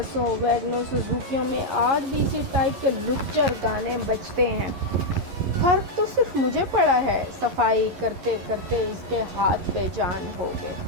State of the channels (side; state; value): left; late; 11 ms